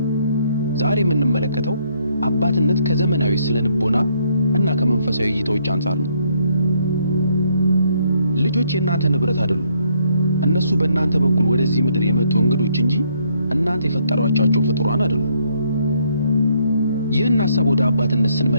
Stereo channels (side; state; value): both; inverted; correlation -0.69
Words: ዛሬ የምንመለከተው አባትነት ከዘመናዊ ስለንቦና እና ከመንፈሳዊ እይታዎች አንጻር ነው። ልጆች የእናንተ ንብረት አይደሉም። እነሱ በእናንተ በኩል ወደዚህ ምድር የመጡ እንግዶች እንጂ እናንተ የፈጠሯቸው ፍጡራን አይደሉም። ይህን ሐሳብ ወደ አባትነት